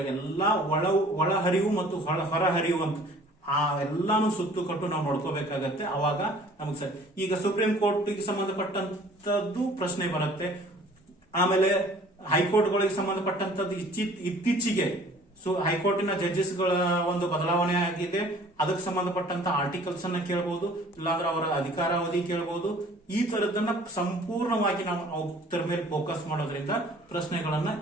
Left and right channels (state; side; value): normal; both; correlation 0.51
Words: ಎಲ್ಲಾ ಒಳಹರಿವು ಮತ್ತು ಹೊರಹರಿವು ಅಂತ ಆ ಎಲ್ಲಾನು ಸುತ್ತು ಕಟ್ಟು ನಾವು ನೋಡ್ಕೋಬೇಕಾಗತ್ತೆ. ಅವಾಗ ನಮಗ್ ಸರಿ. ಈಗ ಸುಪ್ರೀಂ ಕೋರ್ಟ್ ಗೆ ಸಂಬಂಧಪಟ್ಟಂತದ್ದು ಪ್ರಶ್ನೆ ಬರುತ್ತೆ, ಆಮೇಲೆ ಹೈಕೋರ್ಟ್ ಗಳಿಗೆ ಸಂಬಂಧಪಟ್ಟಂತದ್ದು ಇತ್ತೀಚೆಗೆ ಹೈಕೋರ್ಟಿನ ಜಡ್ಜಸ್ ಗಳ ಒಂದು ಬದಲಾವಣೆ ಆಗಿದೆ, ಅದಕ್ಕೆ ಸಂಬಂಧಪಟ್ಟಂತ ಆರ್ಟಿಕಲ್ಸ್ ಅನ್ನ ಕೇಳಬಹುದು, ಇಲ್ಲಾಂದ್ರೆ ಅವರ ಅಧಿಕಾರಾವಧಿ ಕೇಳಬಹುದು. ಈ ತರದನ್ನ ಸಂಪೂರ್ಣವಾಗಿ ನಾವು ಅದರ ಮೇಲೆ ಫೋಕಸ್ ಮಾಡೋದ್ರಿಂದ ಪ್ರಶ್ನೆಗಳನ್ನ